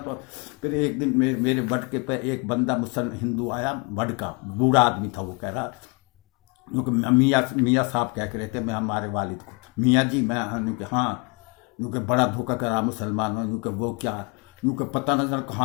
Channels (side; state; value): right; quieter; 31.7 dB